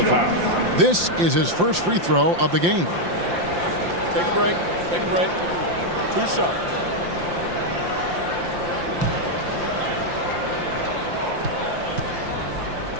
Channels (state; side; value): late; left; 5.8 ms